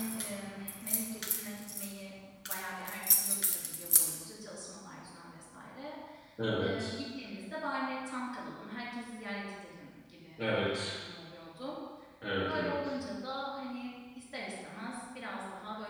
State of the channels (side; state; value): both; identical; correlation 1.00